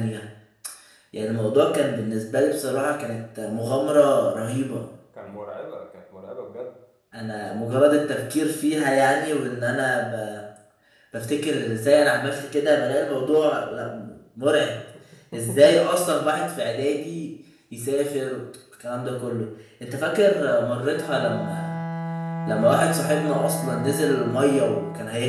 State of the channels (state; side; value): identical; both; correlation 1.00